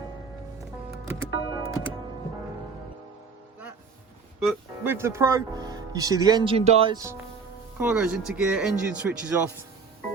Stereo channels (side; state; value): left; quieter; 5.1 dB